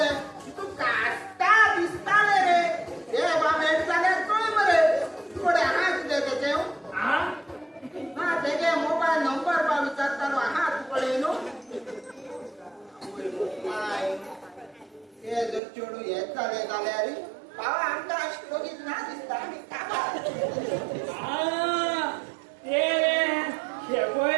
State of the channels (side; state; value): left; drops out; at 15.6 s